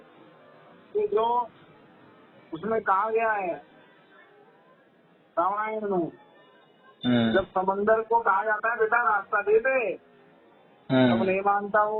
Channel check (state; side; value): identical; both; correlation 1.00